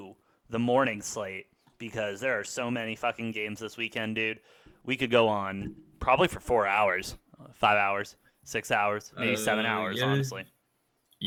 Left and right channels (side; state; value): both; identical; correlation 1.00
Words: the morning slate. Because there are so many fucking games this weekend, dude. We could go on probably for 4 hours, 5 hours, 6 hours, maybe 7 hours, Yeah, honestly.